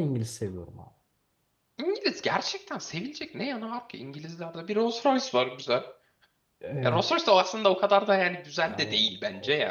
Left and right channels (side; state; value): both; identical; correlation 1.00